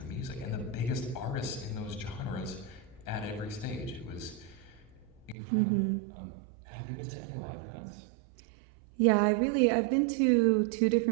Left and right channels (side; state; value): left; drops out; at 5.4 s